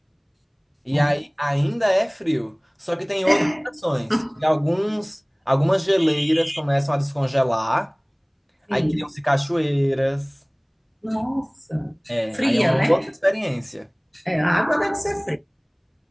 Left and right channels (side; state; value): both; identical; correlation 1.00